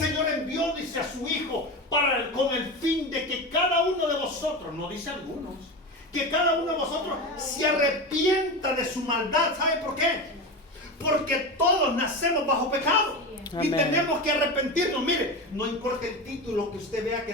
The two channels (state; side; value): normal; both; correlation 0.23